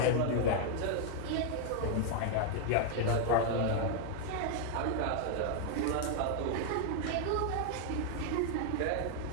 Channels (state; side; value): different; both; correlation 0.00